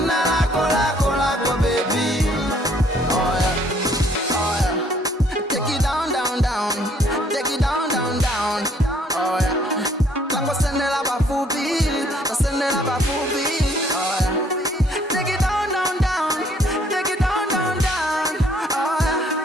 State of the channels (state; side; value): normal; both; correlation 0.63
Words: lako baby. Oh yeah, oh yeah. Take it down, down, down. Take it down, down, down. Oh yeah. Tango sendela bafupi, sendela bafupi. Oh yeah. Take it down, down, down. Take it down, down, down. Oh